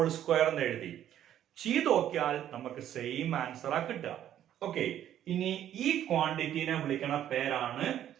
square എന്ന് എഴുതി ചെയ്ത് നോക്കിയാൽ നമുക്ക് സെയിം ആൻസർ ആ കിട്ടുക. ഓക്കെ, ഇനി ഈ ക്വാണ്ടിറ്റിനെ വിളിക്കണ പേരാണ്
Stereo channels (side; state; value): left; quieter; 11.1 dB